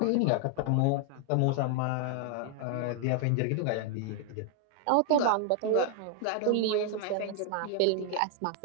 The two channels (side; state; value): both; different; correlation 0.00